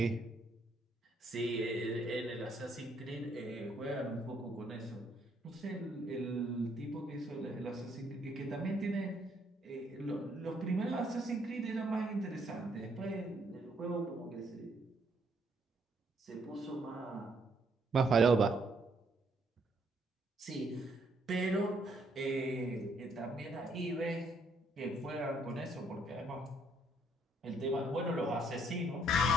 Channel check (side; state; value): both; normal; correlation 0.69